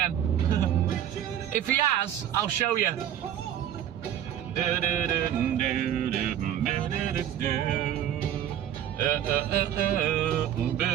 If he has, I'll show you.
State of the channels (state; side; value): quieter; left; 10.5 dB